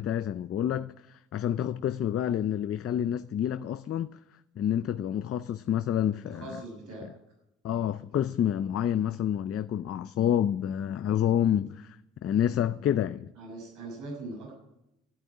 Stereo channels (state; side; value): quieter; right; 9.5 dB